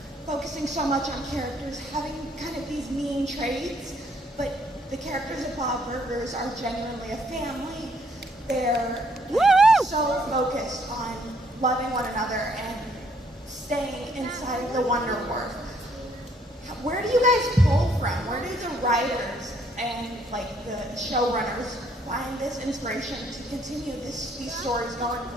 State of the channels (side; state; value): both; normal; correlation 0.67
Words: focusing so much on characters having kind of these mean traits, but the characters of Bob Burgers are genuinely a family. They're so focused on loving one another and staying inside of the Wonder Wharf. Where do you guys pull from? Where do the writers and the showrunners find this inspiration to continue these stories going